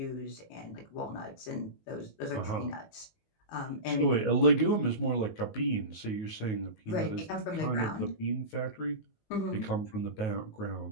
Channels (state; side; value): late; right; 18 ms